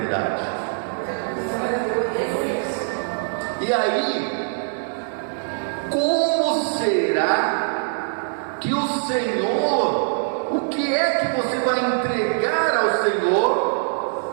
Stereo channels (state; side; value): silent; left; 64 dB below the other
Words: E aí, como será que o Senhor, o que é que você vai entregar ao